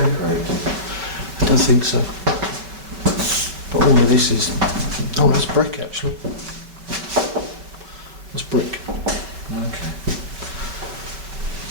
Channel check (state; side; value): late; left; 5.3 ms